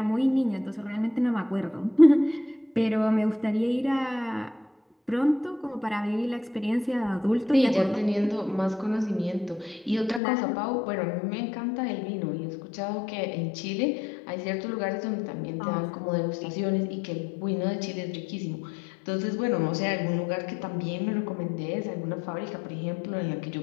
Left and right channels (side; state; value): right; drops out; at 10.2 s